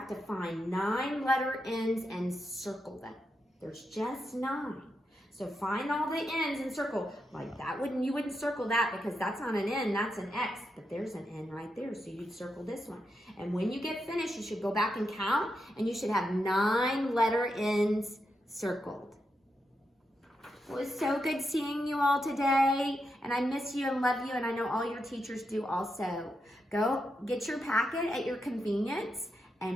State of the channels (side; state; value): both; normal; correlation 0.85